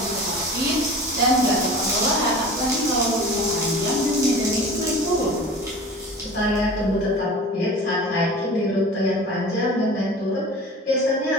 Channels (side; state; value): both; normal; correlation 0.39